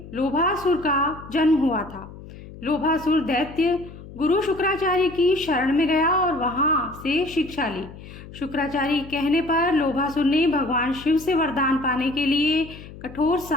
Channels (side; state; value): left; noise; hum, 16 dB below the sound